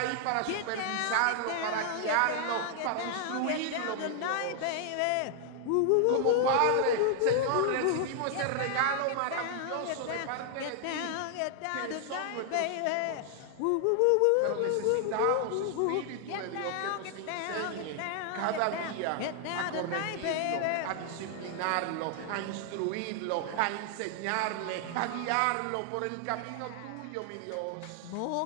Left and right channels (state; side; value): different; both; correlation 0.00